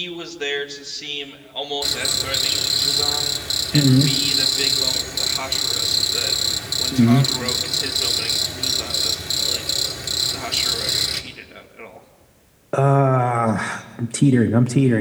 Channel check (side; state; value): both; identical; correlation 1.00